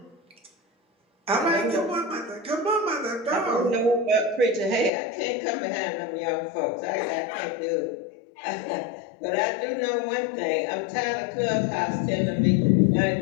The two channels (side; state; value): right; drops out; at 4.9 s